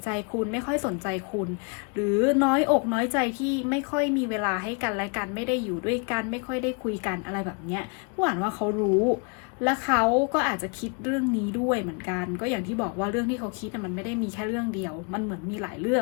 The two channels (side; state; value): right; quieter; 35.3 dB